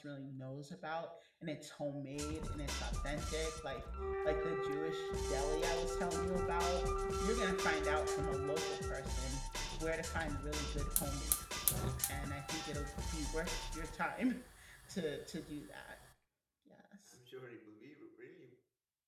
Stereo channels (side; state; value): both; identical; correlation 1.00